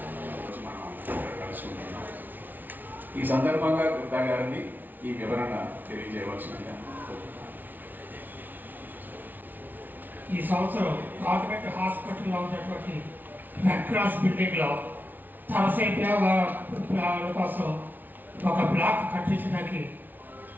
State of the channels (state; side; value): late; left; 0.085 ms